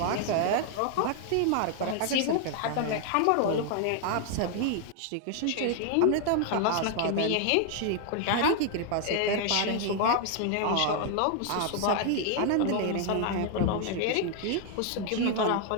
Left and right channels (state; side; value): different; both; correlation 0.00